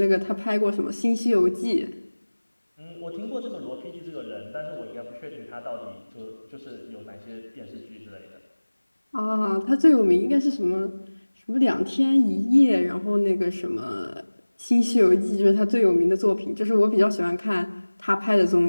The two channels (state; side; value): inverted; both; correlation -1.00